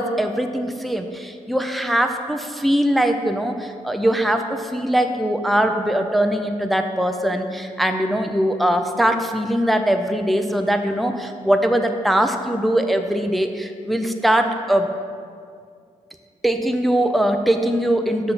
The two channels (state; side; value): normal; both; correlation 0.87